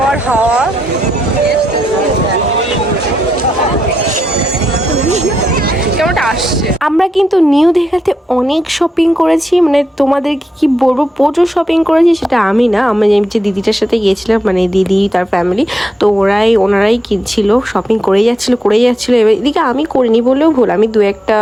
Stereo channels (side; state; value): both; normal; correlation 0.83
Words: হাওয়া। কেমনটা আসছে। আমরা কিন্তু নিউ দীঘাতে অনেক শপিং করেছি, মানে তোমাদেরকে কি বলবো, প্রচুর শপিং করেছি। সেটা আমি না, আমি যে দিদিটার সাথে গিয়েছিলাম, মানে দিদি তার ফ্যামিলি, তো ওনারাই কিনছিল, শপিং করেই যাচ্ছিল। এবার এদিকে আমি করিনি বললেও ভুল, আমি 2-1টা